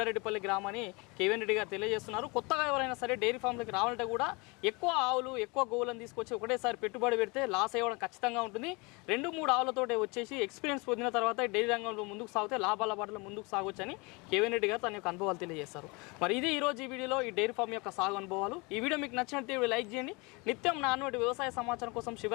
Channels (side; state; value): right; quieter; 27.7 dB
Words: గ్రామాన్ని కేవీఎన్ రెడ్డి గారు తెలియజేస్తున్నారు. కొత్తగా ఎవరైనా సరే డైరీ ఫామ్లోకి రావాలంటే కూడా ఎక్కువ ఆవులు, ఎక్కువ గోవులను తీసుకొచ్చి ఒకటేసారి పెట్టుబడి పెడితే లాస్ అయ్యడం ఖచ్చితంగా ఉంటుంది. 2-3 ఆవులతోటే వచ్చేసి ఎక్స్పీరియన్స్ పొందిన తర్వాత డైరీ రంగంలో ముందుకు సాగితే లాభాల బాటలో ముందుకు సాగొచ్చని కేవీఎన్ రెడ్డి గారు తన యొక్క అనుభవాలు తెలియజేస్తారు. మరి ఇది ఈరోజు ఈ వీడియోలో ఈ డైరీ ఫామ్ యొక్క సాగు అనుభవాలు. ఈ వీడియో మీకు నచ్చినట్టు లైక్ చేయండి. నిత్యం నాన్నటి వ్యవసాయ సమాచారం కోసం